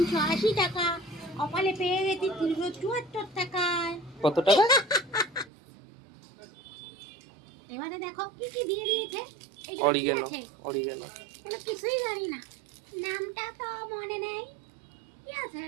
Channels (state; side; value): drops out; left; at 5.5 s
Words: টাকা, কপালে পেয়ে গেছি 374 টাকায়। কত টাকা? এবারে দেখো কি কি দিয়ে দিয়েছে। অরিগেনো। অরিগেনো এগুলো কিছুই জানি না, নামটা তো মনে নেই। কি আছে